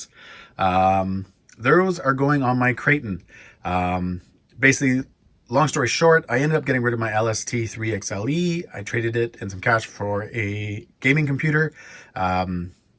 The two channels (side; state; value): both; identical; correlation 1.00